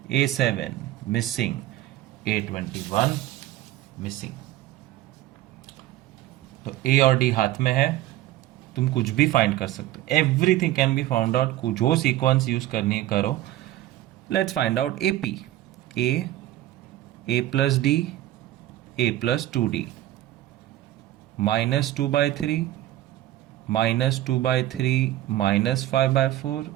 A7 missing, A21 missing. तो A और D हाथ में है, तुम कुछ भी फाइंड कर सकते हो. Everything can be found out. जो सीक्वेंस यूज करनी है करो. Let's find out AP. A plus D, A plus 2D. -2/3, -2/3, -5/4,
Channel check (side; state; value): left; quieter; 14.6 dB